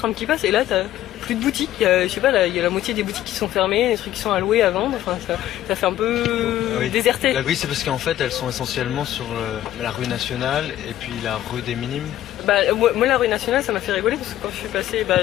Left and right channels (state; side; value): quieter; right; 13.2 dB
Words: qui passe, et là t'as plus de boutiques. Il y a la moitié des boutiques qui sont fermées, des trucs qui sont à louer, à vendre. Enfin, ça fait un peu déserté. Oui, c'est parce qu'en fait, elles sont essentiellement sur la rue Nationale et puis la rue des Minimes. Moi, la rue Nationale, ça m'a fait rigoler parce que quand je suis passée,